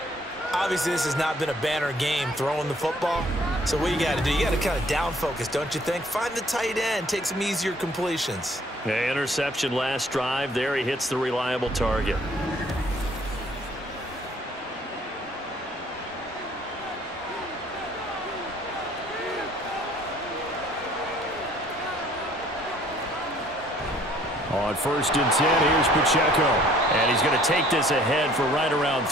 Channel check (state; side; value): normal; both; correlation 0.59